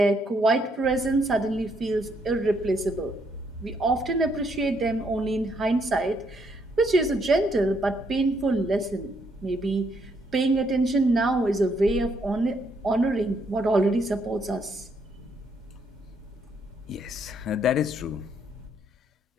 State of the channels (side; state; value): both; normal; correlation 0.73